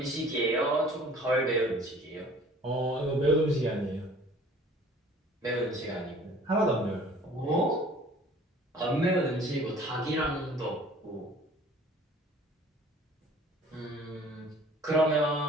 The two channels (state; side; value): normal; both; correlation 0.51